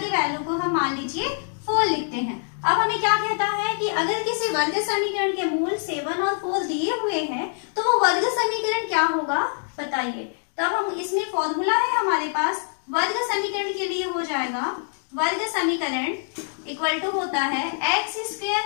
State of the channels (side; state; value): right; silent; 58 dB below the other